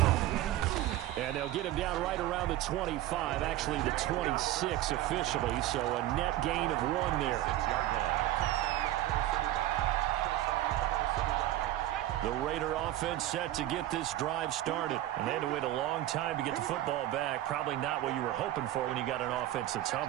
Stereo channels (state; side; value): quieter; left; 14.3 dB